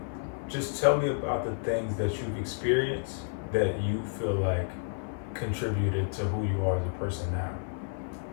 just tell me about the things that you've experienced that you feel like contributed to who you are as a person now.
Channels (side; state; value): right; silent; 57 dB below the other